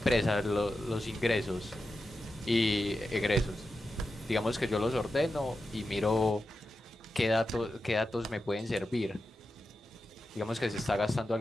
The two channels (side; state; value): both; normal; correlation 0.90